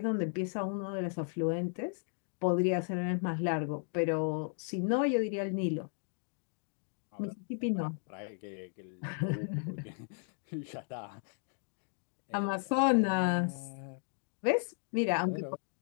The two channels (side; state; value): right; silent; 54 dB below the other